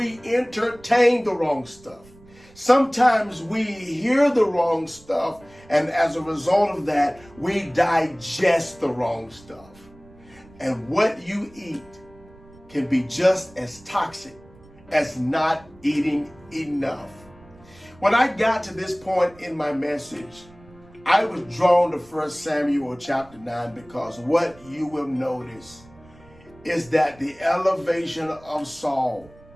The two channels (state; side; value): noise; right; rumble, 25 dB below the sound